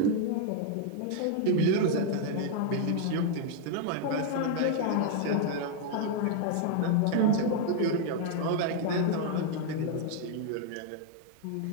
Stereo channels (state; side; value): different; both; correlation 0.00